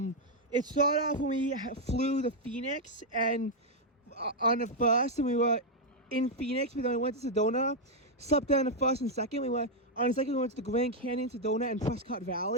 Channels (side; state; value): both; normal; correlation -0.01